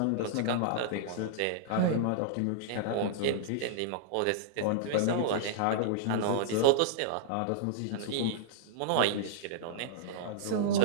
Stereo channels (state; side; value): different; both; correlation -0.02